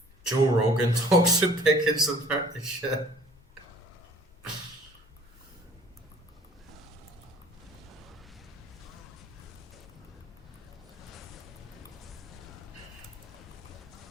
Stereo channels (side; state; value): both; normal; correlation 0.52